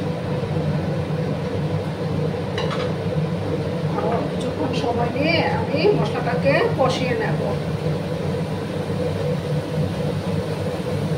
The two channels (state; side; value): identical; both; correlation 1.00